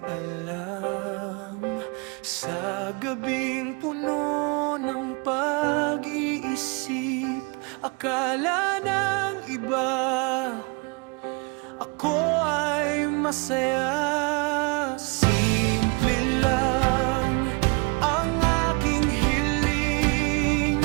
alam. Sa gabing puno ng pag-iisip, akala ng iba ako ay masaya. Simple lang ang aking hiling,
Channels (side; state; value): left; quieter; 31.0 dB